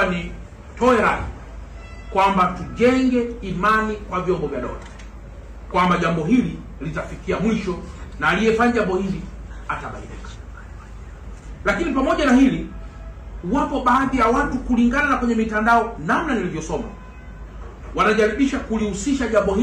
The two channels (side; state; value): both; identical; correlation 1.00